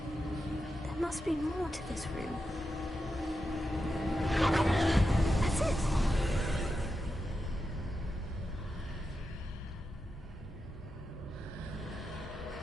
There must be more to this room. That's it!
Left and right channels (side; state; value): both; normal; correlation 0.89